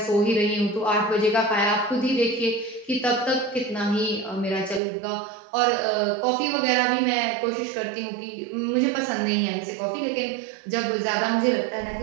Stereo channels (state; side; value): drops out; left; at 4.8 s